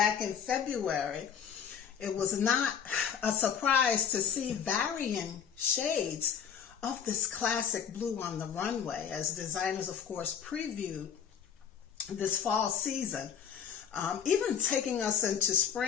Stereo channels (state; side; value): quieter; right; 8.0 dB